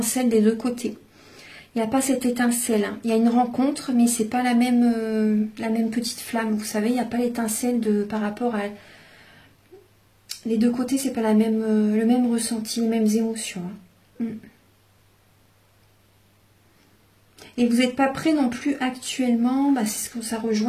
des deux côtés. Il n'y a pas cette étincelle. Hein. Il y a une rencontre, mais c'est pas la même petite flamme. Vous savez, il n'y a pas l'étincelle par rapport à... Les deux côtés, c'est pas le même ressenti, les mêmes émotions. Hein. Et vous n'êtes pas prêt non plus actuellement, c'est ce que ça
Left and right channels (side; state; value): both; identical; correlation 1.00